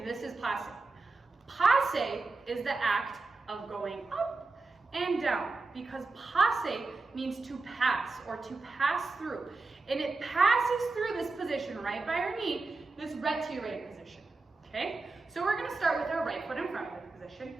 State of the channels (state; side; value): quieter; left; 3.7 dB